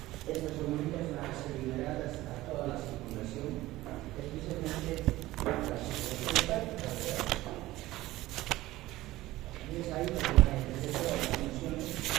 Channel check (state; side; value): quieter; left; 17.1 dB